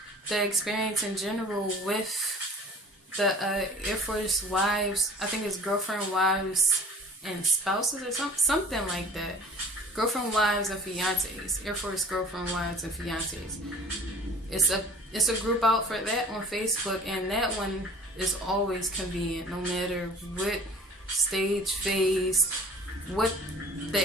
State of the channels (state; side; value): normal; both; correlation 0.46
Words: the experience in general with the Airforce wives, I think it's girlfriend, wives, and spouses or something like that. Girlfriend, wives, and fiancés. Airforce girlfriend, wives, and fiancés. It's a group out for that on Facebook, and that one is always convenient, no matter what stage, phase, what